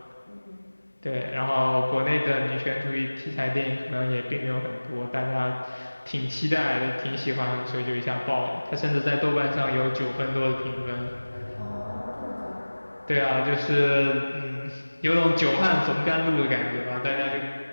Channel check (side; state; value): both; inverted; correlation -1.00